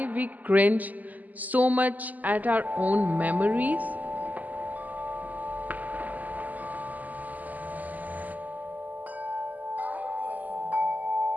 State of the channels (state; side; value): late; left; 0.080 ms